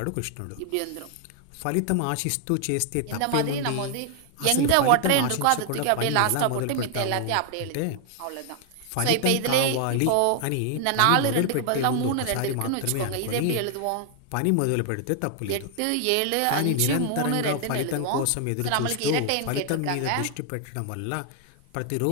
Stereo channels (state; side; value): different; both; correlation 0.00